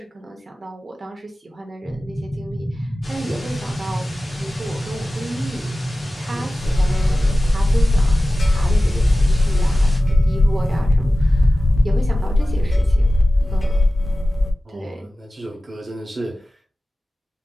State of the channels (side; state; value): both; normal; correlation 0.96